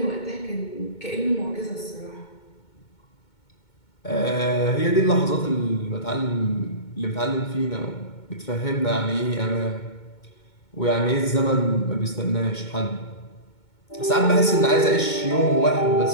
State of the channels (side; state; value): right; late; 2.2 ms